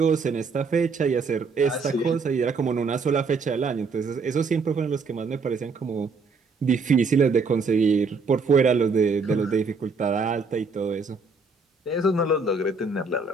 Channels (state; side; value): quieter; left; 4.4 dB